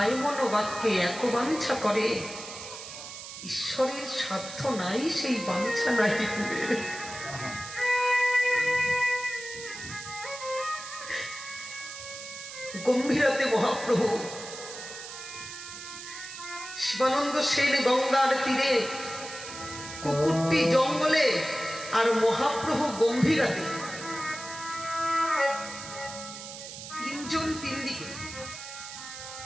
মনোবাক্যে এক বাঞ্ছা করে, ঈশ্বরের সাধ্য নাই সেই বাঞ্ছা নাই দিবে। গম্ভীরাতে মহাপ্রভু শিবানন্দ সেন গঙ্গার তীরে, কুকুরটি জঙ্গলে, আর মহাপ্রভু গম্ভীরাতে, তিনজন তিন দিকে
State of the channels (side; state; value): right; noise; hiss, 11 dB below the sound